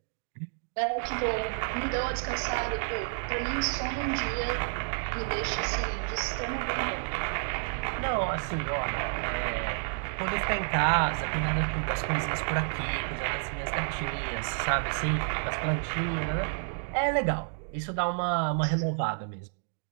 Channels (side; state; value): left; silent; digital silence